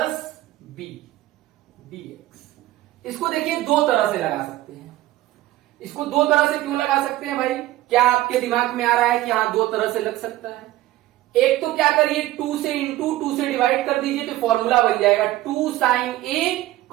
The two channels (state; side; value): quieter; left; 15.9 dB